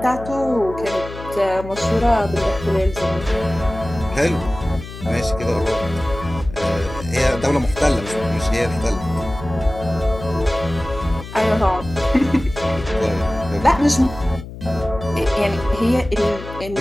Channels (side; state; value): left; noise; hum, 12 dB below the sound